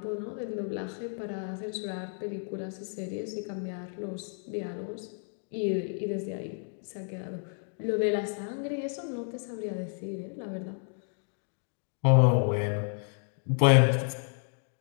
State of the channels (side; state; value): right; silent; 57 dB below the other